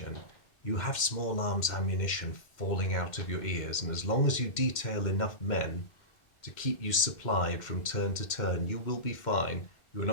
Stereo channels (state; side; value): late; right; 2.1 ms